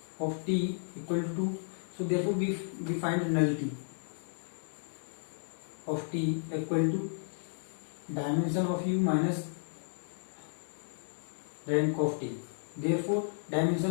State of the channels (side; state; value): right; silent; digital silence